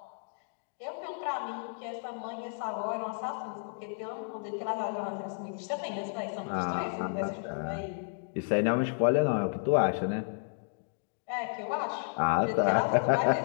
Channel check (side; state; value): right; silent; digital silence